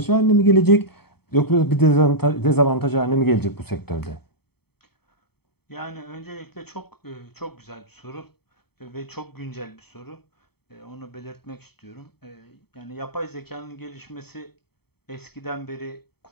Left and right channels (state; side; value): late; right; 0.96 ms